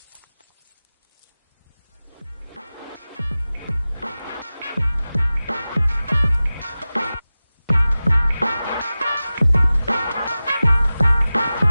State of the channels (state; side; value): inverted; both; correlation -0.96